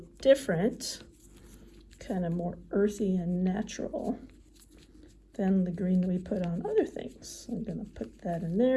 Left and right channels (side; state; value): both; identical; correlation 1.00